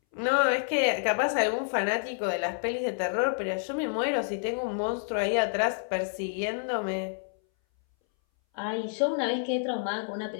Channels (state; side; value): silent; right; 59 dB below the other